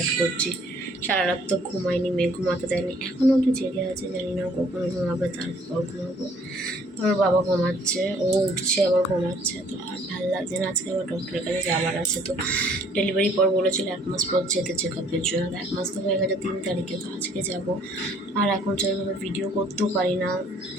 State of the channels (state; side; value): normal; both; correlation 0.59